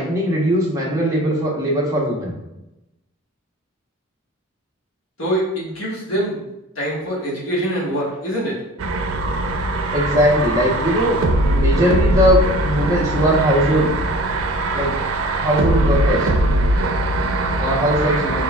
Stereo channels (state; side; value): normal; both; correlation 0.44